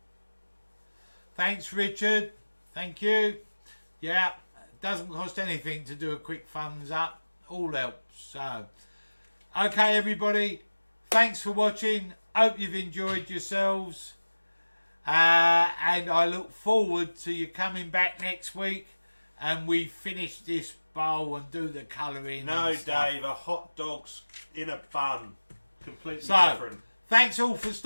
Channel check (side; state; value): both; inverted; correlation -1.00